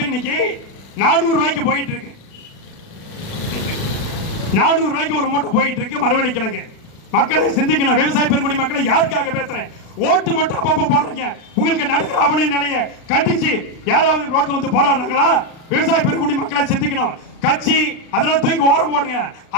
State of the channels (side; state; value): right; late; 36 ms